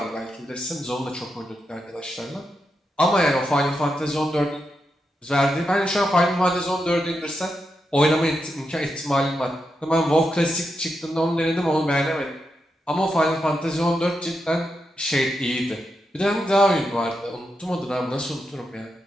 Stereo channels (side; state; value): both; normal; correlation 0.85